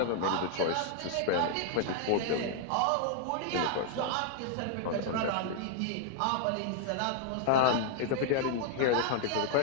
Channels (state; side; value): different; both; correlation -0.01